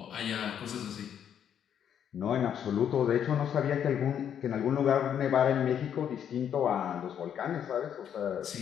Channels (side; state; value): right; quieter; 9.0 dB